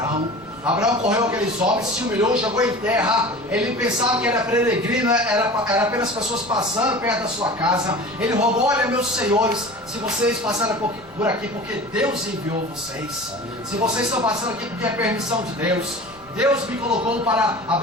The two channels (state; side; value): noise; left; rumble, 27 dB below the sound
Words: Abraão correu aqueles homens, se humilhou, jogou em terra. Ele pensava que era peregrino, era apenas pessoas passando perto da sua casa. Ele rogou: olha, meus senhores, se vocês passaram por aqui porque Deus enviou vocês, se vocês estão passando aqui porque é permissão de Deus, Deus me colocou para